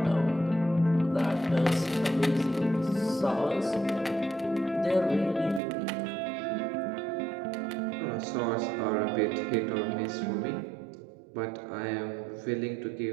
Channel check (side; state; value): left; drops out; at 5.6 s